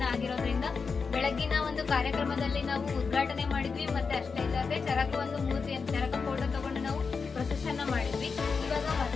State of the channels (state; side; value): quieter; right; 5.1 dB